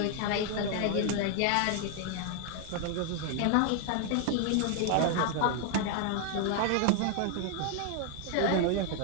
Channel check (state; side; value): different; both; correlation 0.00